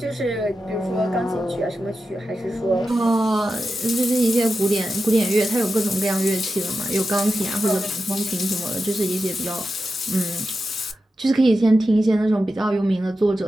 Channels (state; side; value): normal; both; correlation 0.90